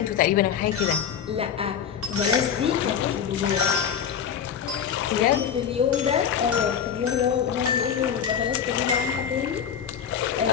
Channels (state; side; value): quieter; right; 8.1 dB